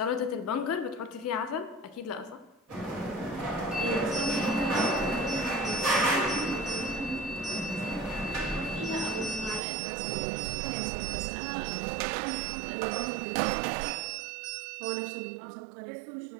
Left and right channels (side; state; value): left; drops out; at 9.6 s